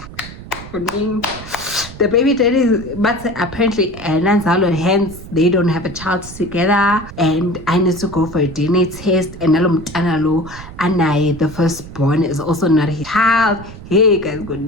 the baby daddy, but apparently nanzalo, hence they don't have a child together, and I need to go for a DNA test, and nalo anaye, the firstborn, is also not his child. Hey guys, good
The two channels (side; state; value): right; noise; rumble, 15 dB below the sound